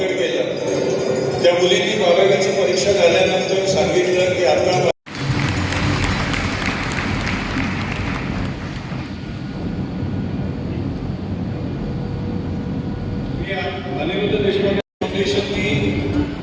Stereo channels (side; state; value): both; identical; correlation 1.00